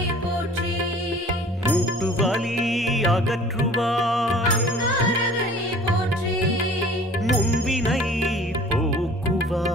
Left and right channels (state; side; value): normal; both; correlation 0.48